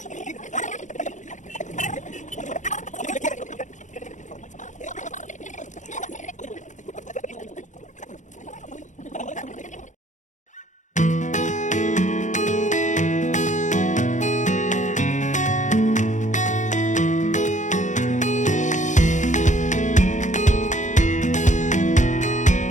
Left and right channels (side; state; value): right; late; 0.36 ms